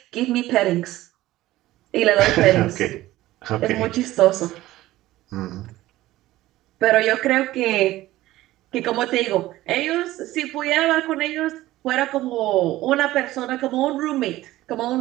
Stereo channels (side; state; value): left; quieter; 16.2 dB